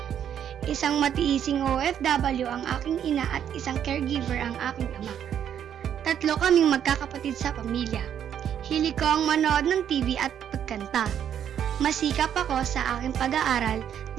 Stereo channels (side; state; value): left; quieter; 9.3 dB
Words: Isang matiising OFW ang aking ina at isang caregiver ang aking ama. 3 kaming magkakapatid sa pamilya. Hilig ko ang manood ng TV at pagkanta. Masikap ako sa aking pag-aaral